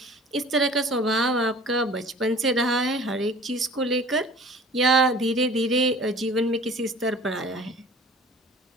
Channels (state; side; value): normal; both; correlation 0.45